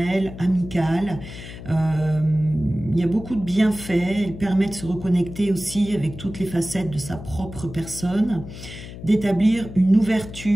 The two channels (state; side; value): noise; left; hum, 13 dB below the sound